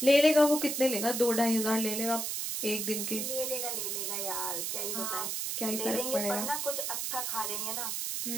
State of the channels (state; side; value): noise; right; hiss, 2 dB below the sound